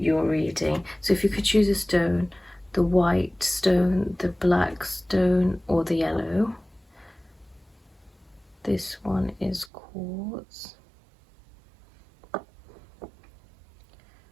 reading. So if you could choose a stone, the white stone, the black stone, or the yellow. This one is quartz.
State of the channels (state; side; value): drops out; left; at 9.7 s